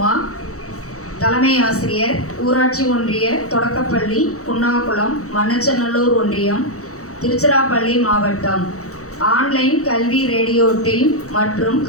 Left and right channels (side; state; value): right; late; 0.65 ms